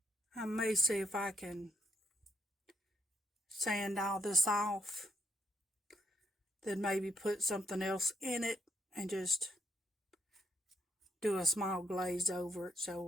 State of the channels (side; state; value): both; normal; correlation 0.75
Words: I may see if I can sand all this off, then maybe put something else in it and just do a small glaze over it